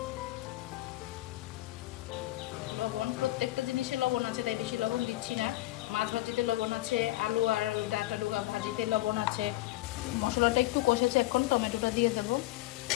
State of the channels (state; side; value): quieter; right; 17.7 dB